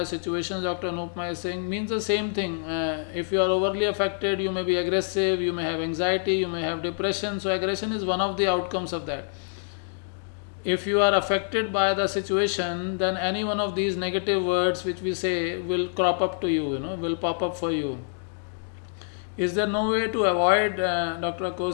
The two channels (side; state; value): right; silent; digital silence